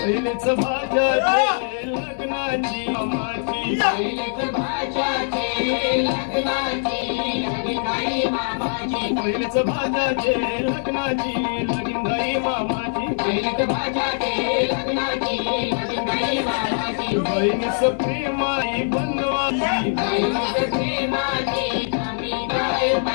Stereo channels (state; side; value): silent; right; 64 dB below the other